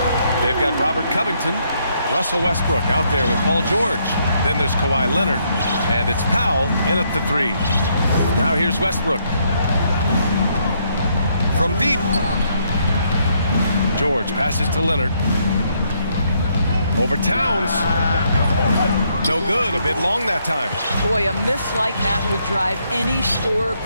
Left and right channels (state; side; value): inverted; both; correlation -0.73